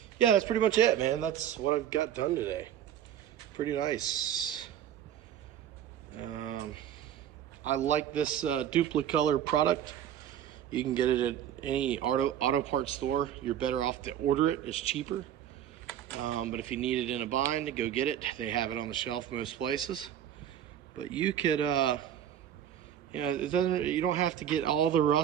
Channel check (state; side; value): quieter; left; 10.3 dB